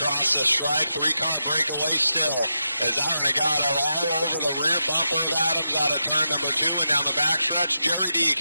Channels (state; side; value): inverted; both; correlation -0.86